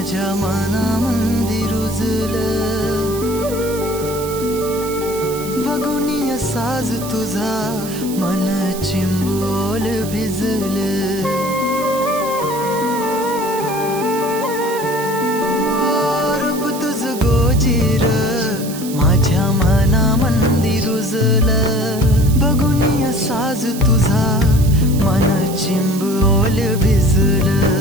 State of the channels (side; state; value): right; noise; hiss, 12 dB below the sound